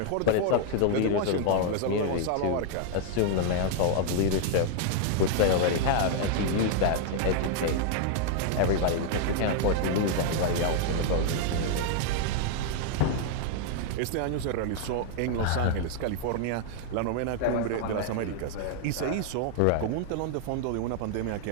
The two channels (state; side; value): different; both; correlation 0.00